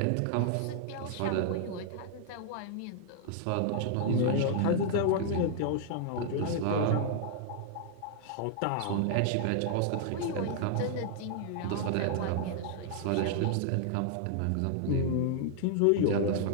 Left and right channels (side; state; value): both; different; correlation -0.01